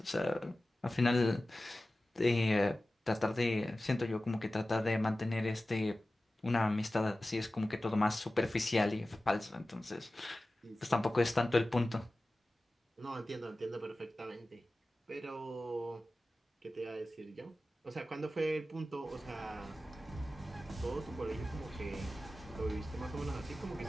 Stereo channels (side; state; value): both; normal; correlation 0.96